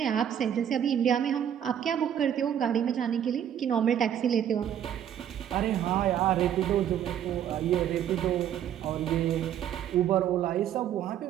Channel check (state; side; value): quieter; left; 9.9 dB